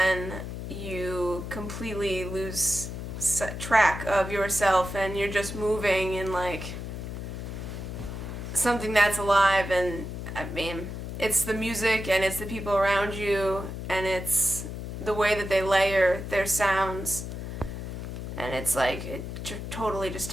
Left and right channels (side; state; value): left; noise; hum, 7 dB below the sound